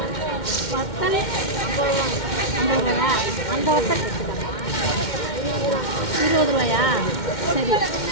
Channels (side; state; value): right; late; 2.1 ms